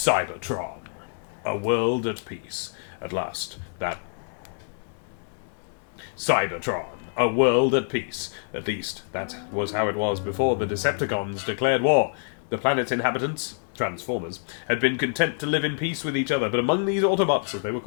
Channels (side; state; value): right; silent; digital silence